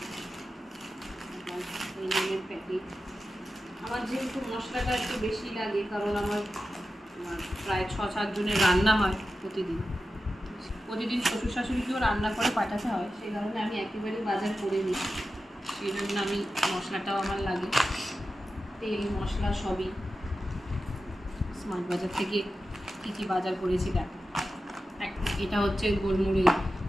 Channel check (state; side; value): normal; both; correlation 0.92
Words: এই নুনের প্যাকেট। আমার যেহেতু মশলাটা একটু বেশি লাগে, কারণ আমার প্রায় 6-7 জনের রান্না হয় প্রতিদিন। শ্বশুর শাশুড়িকেও রান্না করে পাঠাতে হয়, সেই কারণে আমি একেবারেই বাজার করে নিই। সেই জন্য আমি মশলাটাও আমার লাগে, তেল মশলা সবই। স্মার্ট বাজার থেকে কী কী বাজার করেছি দেখো। এটা হচ্ছে গোলমরিচ,